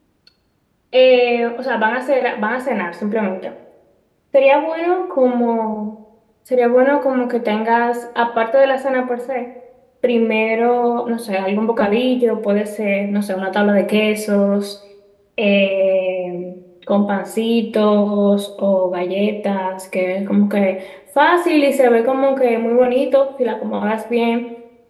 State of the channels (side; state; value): both; identical; correlation 1.00